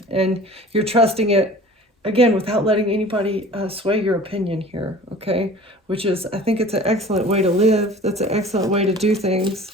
And you're trusting it, again, without letting anybody sway your opinion here, okay? Which is, I think it's an excellent way to live. That's an excellent way to do things.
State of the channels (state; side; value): normal; both; correlation 0.43